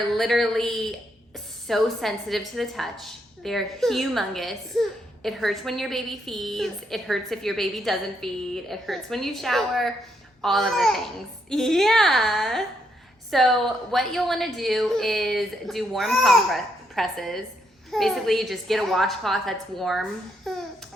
literally so sensitive to the touch. They're humongous. It hurts when your baby feeds. It hurts if your baby doesn't feed. It hurts when you shower. All of the things. Yeah. So what you'll want to do is do warm compresses. Basically, you just get a washcloth that's warm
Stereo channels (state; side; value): normal; both; correlation 0.77